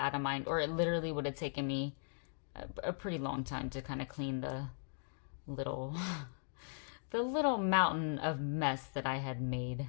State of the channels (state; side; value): silent; right; digital silence